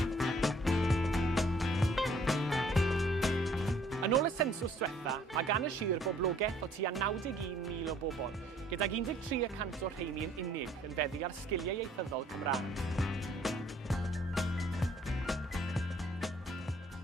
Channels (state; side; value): normal; both; correlation 0.60